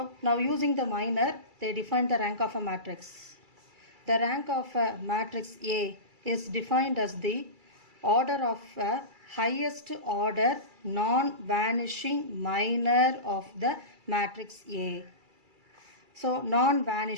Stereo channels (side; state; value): left; late; 2.3 ms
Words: now using the minor, they define the rank of a matrix. The rank of a matrix A is defined as the order of a highest order non-vanishing minor of the matrix A. So